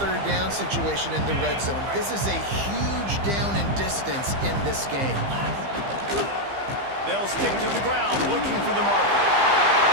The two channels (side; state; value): left; late; 15 ms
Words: down situation in the red zone. This is a huge down in distance in this game. They'll stick to the ground, looking for the marker.